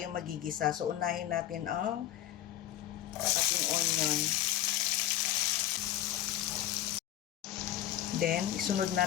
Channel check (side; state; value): right; quieter; 12.8 dB